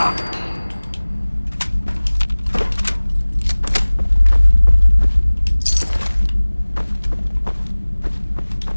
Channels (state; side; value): inverted; both; correlation -1.00